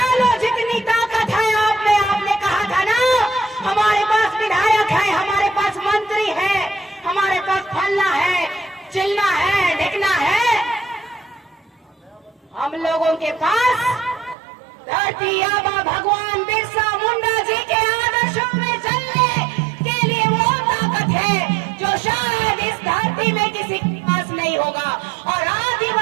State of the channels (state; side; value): drops out; left; at 14.4 s